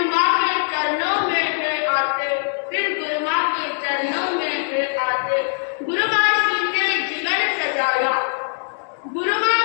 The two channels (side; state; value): right; silent; digital silence